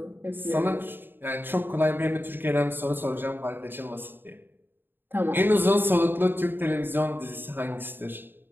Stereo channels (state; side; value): late; left; 0.096 ms